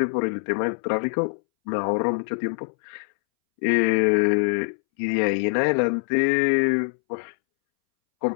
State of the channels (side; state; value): right; silent; 63 dB below the other